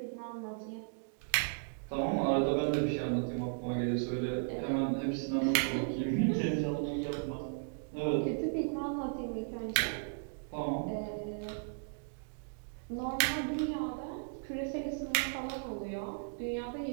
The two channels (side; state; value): left; silent; digital silence